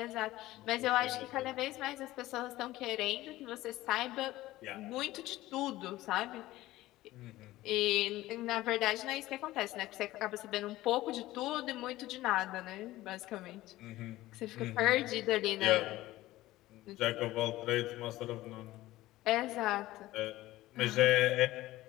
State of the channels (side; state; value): right; quieter; 16.8 dB